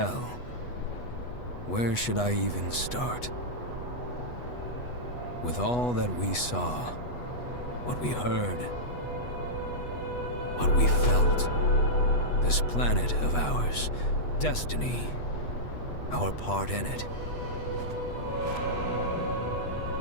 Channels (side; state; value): right; late; 8.2 ms